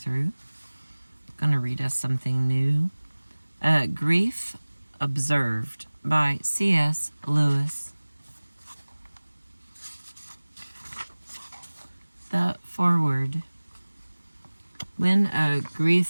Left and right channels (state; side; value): inverted; both; correlation -1.00